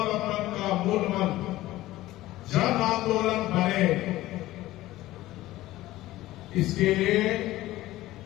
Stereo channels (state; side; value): quieter; right; 16.4 dB